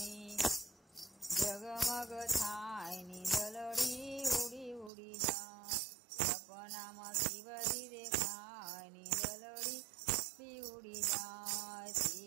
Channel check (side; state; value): left; drops out; at 4.9 s